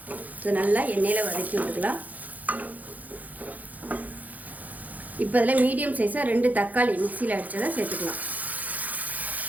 இது நல்லா எண்ணெயில் வதக்கி விட்டுக்கலாம். இப்போ இதில் மீடியம் சைஸாக 2 தக்காளி மிக்சியில் அடித்ததை சேர்த்துக்கலாம்.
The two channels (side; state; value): left; late; 0.080 ms